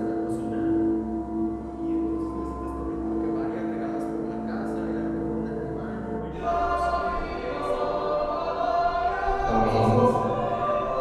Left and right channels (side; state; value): both; identical; correlation 1.00